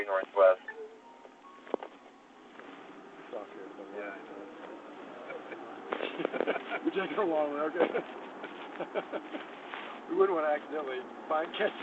Northwest. Stop here. Yeah, I know. We're taking a long one, okay? We wouldn't want to accidentally catch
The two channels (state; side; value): identical; both; correlation 1.00